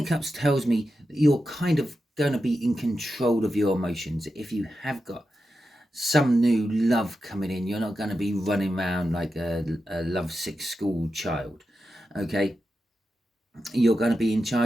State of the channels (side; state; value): both; normal; correlation 0.90